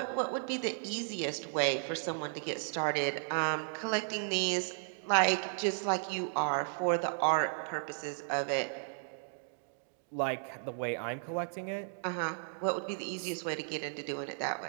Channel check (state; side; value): silent; left; digital silence